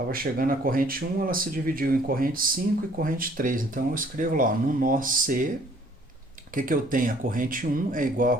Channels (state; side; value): normal; both; correlation 0.59